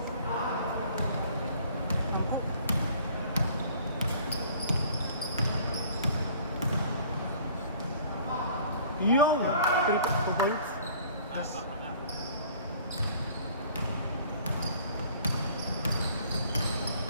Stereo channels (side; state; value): both; inverted; correlation -0.53